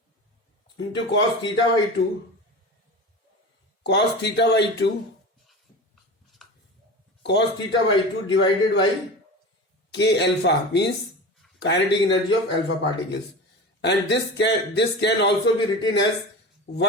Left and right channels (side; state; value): both; normal; correlation 0.30